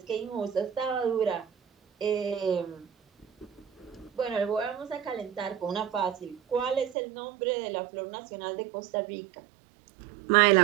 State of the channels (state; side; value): drops out; left; at 7.0 s